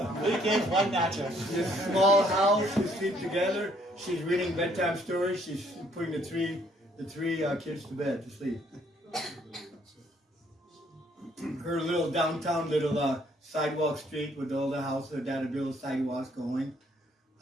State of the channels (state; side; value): normal; both; correlation 0.65